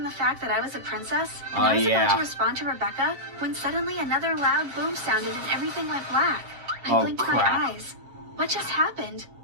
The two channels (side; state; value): left; late; 7.6 ms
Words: the fact that I was a princess, and I was about to respond to Rebecca when suddenly another loud boom sounded and everything went black. I blinked my eyes. What just happened?